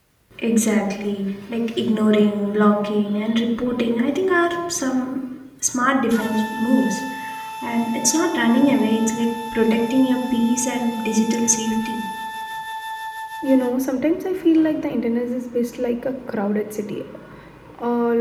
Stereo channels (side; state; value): both; identical; correlation 1.00